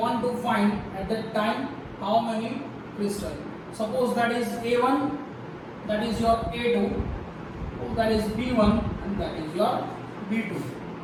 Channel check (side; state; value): both; identical; correlation 1.00